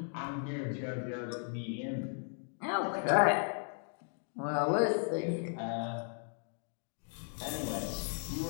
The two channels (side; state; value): right; silent; 54 dB below the other